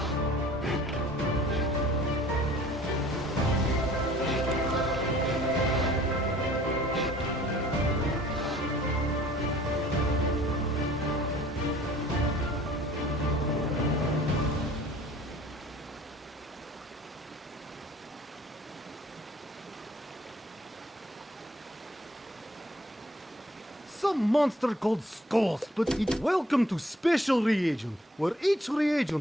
Some monster called Skulls, but it's welcome to Special Reagent, where each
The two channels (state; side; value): normal; both; correlation 0.55